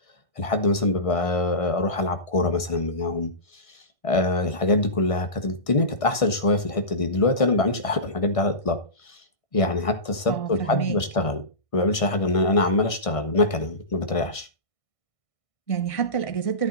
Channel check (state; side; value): late; right; 1.6 ms